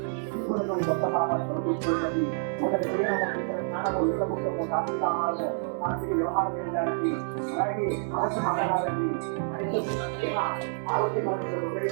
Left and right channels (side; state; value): left; silent; digital silence